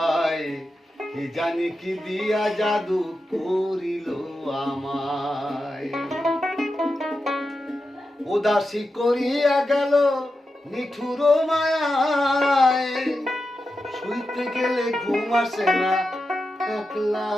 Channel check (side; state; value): both; normal; correlation 0.90